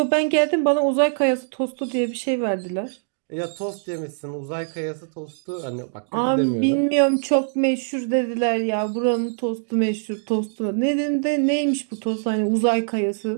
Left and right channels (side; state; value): left; silent; digital silence